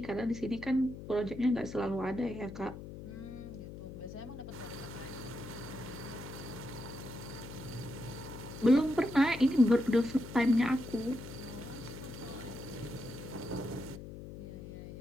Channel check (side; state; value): left; noise; hum, 11 dB below the sound